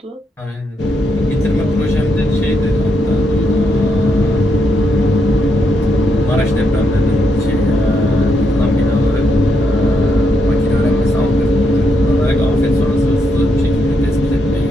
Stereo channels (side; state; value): both; normal; correlation 0.79